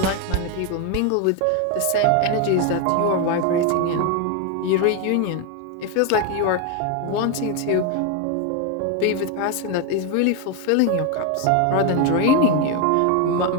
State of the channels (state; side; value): different; both; correlation 0.01